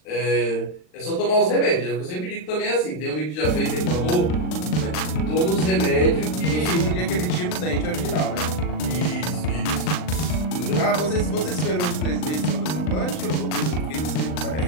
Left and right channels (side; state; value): right; late; 39 ms